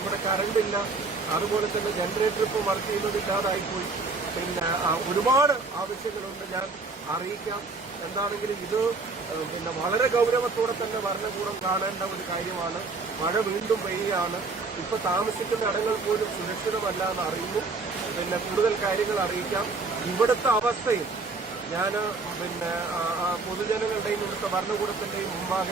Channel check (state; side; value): quieter; left; 3.9 dB